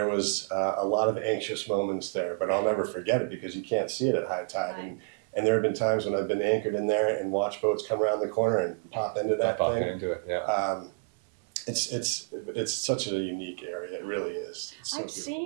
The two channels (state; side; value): silent; left; 58 dB below the other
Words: was a lot of anxious moments there, but I'll never forget it because you can't see it at high tide. Right. And there have been times when I've been anchored in there and watched boats come around the corner and pop into that Popping thing. into it. Yeah. It's such a unique area. It really is. It's so I've